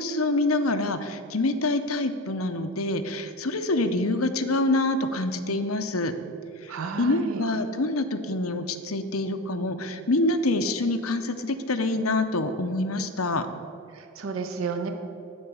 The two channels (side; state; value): both; normal; correlation 0.25